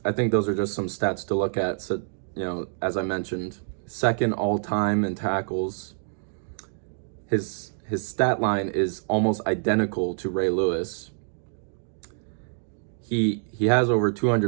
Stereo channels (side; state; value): left; silent; digital silence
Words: I think those are just some stats to look at. So, as I mentioned, second all-time in tackles. His stat line is almost identical to Ray Lewis. He has over